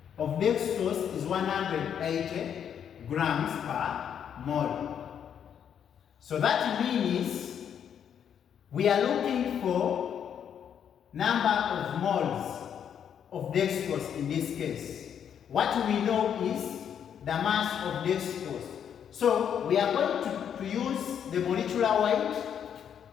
of dextrose is 180 grams per mole. So that means we are looking for number of moles of dextrose in this case. What we know is the mass of dextrose. So we are going to use the molecular weight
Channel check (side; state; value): right; quieter; 8.5 dB